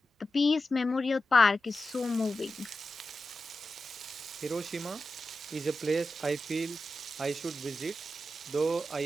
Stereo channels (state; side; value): normal; both; correlation 0.91